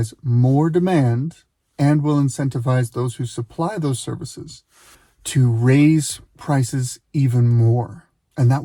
more demand and will incentivize those who supply those services to raise prices even more. And that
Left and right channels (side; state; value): both; identical; correlation 1.00